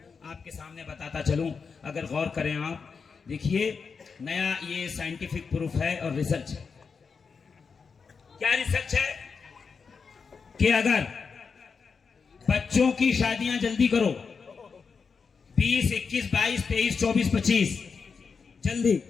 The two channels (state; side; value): quieter; right; 5.5 dB